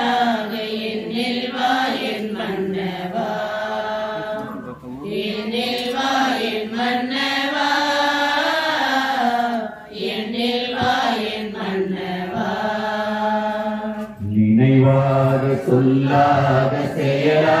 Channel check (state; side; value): identical; both; correlation 1.00